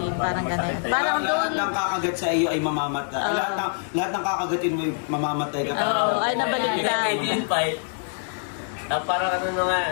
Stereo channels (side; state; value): right; silent; digital silence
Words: Parang ganun. Parang doon... Lahat ng kakagat sa iyo ay mamamatay. Lahat ng kakagatin mo ay mamamatay ka. Ay nabaliktad. Parang